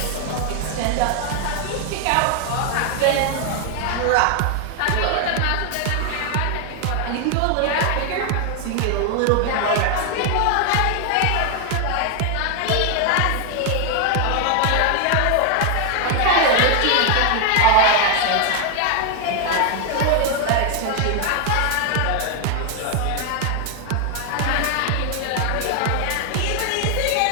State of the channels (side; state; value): both; different; correlation 0.00